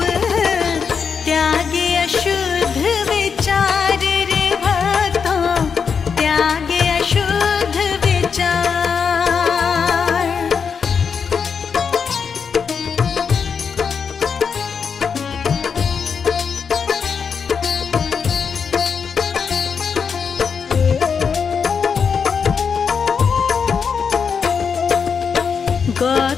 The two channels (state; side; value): quieter; right; 6.2 dB